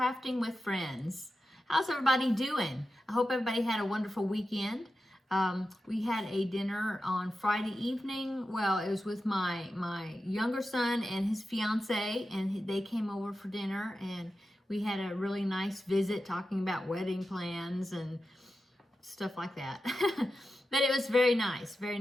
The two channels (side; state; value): both; normal; correlation 0.91